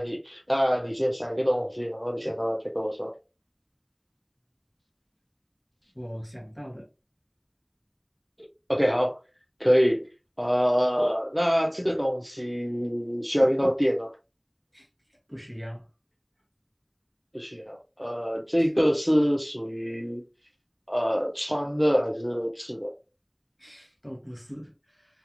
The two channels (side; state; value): both; identical; correlation 1.00